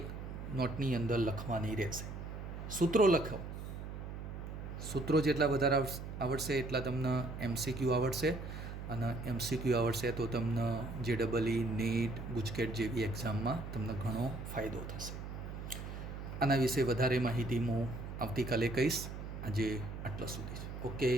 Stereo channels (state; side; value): noise; right; hum, 8 dB below the sound